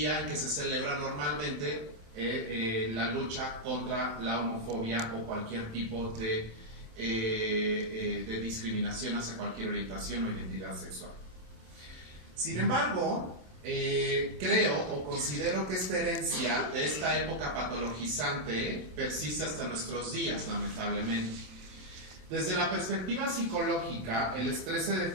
en que se celebra normalmente la lucha contra la homofobia o cualquier tipo de discriminación hacia cualquier orientación o identidad sexual. Sin embargo, creo o considero que esta herencia de esta época patologizante persiste hasta nuestros días, lamentablemente. Desde la perspectiva psicológica, el estrés se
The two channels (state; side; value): late; left; 27 ms